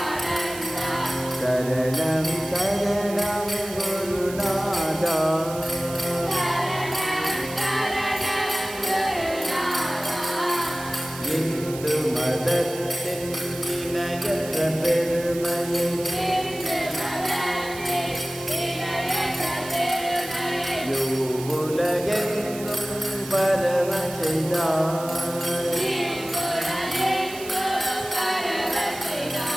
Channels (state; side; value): noise; right; hiss, 13 dB below the sound